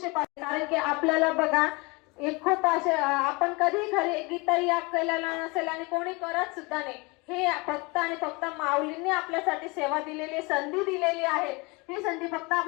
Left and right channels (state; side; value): quieter; right; 26.9 dB